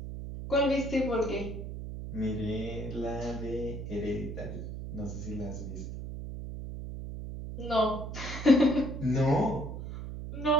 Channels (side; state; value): right; noise; hum, 7 dB below the sound